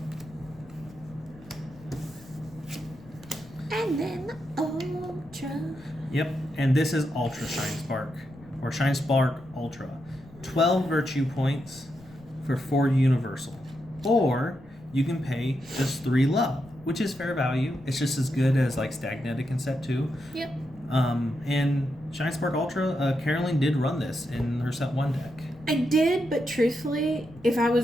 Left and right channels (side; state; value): left; noise; rumble, 22 dB below the sound